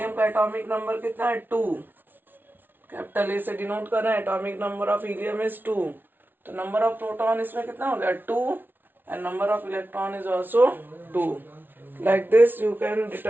का एटॉमिक नंबर कितना है? 2. कैपिटल ए से डिनोट कर रहे हैं. Atomic number of helium is 2. तो नंबर ऑफ प्रोटॉन इसमें कितना हो गया? 2. and number of electron is also 2. Like this you can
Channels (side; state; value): left; late; 0.096 ms